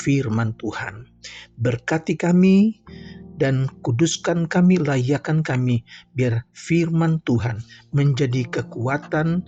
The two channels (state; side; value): identical; both; correlation 1.00